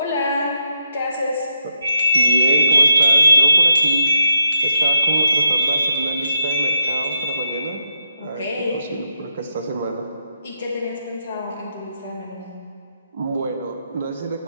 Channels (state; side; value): inverted; both; correlation -0.82